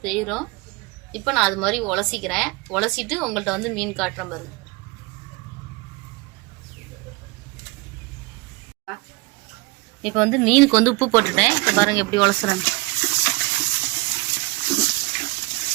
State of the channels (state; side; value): quieter; left; 24.9 dB